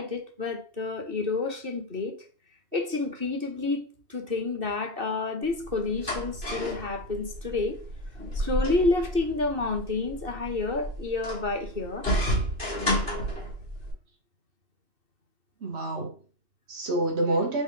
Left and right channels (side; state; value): left; late; 2.6 ms